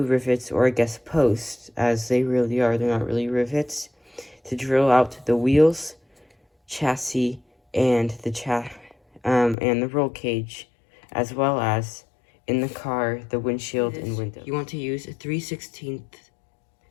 rivets, or I guess posts, as they really are. They're not really rivets, to drill out the wheels, chassis, and the roll cage, as well as in the car the windshield and windows. You want to use a 3/16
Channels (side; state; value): right; drops out; at 9.6 s